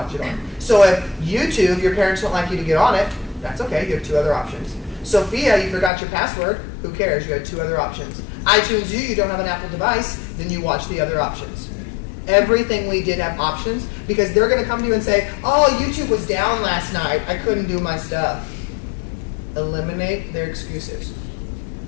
it on. So if YouTube, your parents don't like you to get on it, that's okay, you have 2 other options. Sophia, you forgot your password. Who cares? You had 2 other options. iTunes U, you don't have an Apple device. Then you watch the other options. Everything we did have options because they're going to come to you and say, oh, YouTube was down last night. I couldn't do my stuff. Eliminate their excuses.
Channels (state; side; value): drops out; right; at 5.9 s